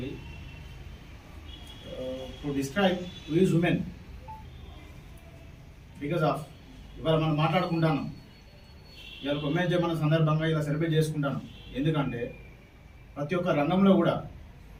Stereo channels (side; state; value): both; identical; correlation 1.00